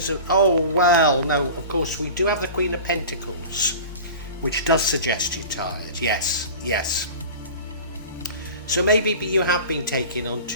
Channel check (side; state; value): both; inverted; correlation -0.36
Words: of, of course we do have the Queen of Pentacles, which does suggest you're tired. Yes. So maybe you have been taking on